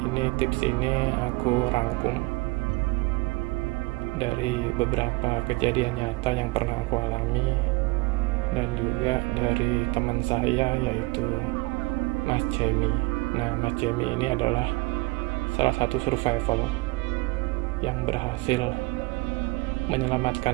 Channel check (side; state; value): left; quieter; 24.2 dB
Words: tips ini aku rangkum dari beberapa kejadian nyata yang pernah aku alami dan juga dari teman saya yaitu Mas Jamie. Nah, Mas Jamie ini adalah salah satu survival yang berhasil